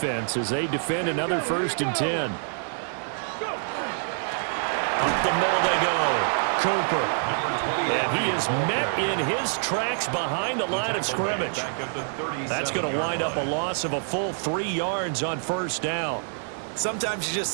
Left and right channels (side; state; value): left; silent; 61 dB below the other